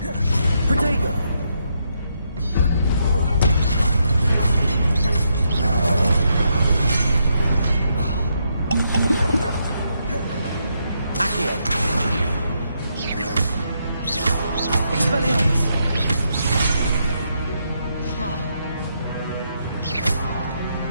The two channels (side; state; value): both; inverted; correlation -0.79